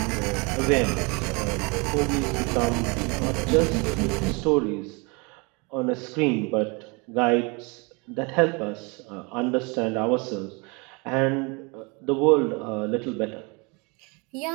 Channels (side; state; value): left; quieter; 29.4 dB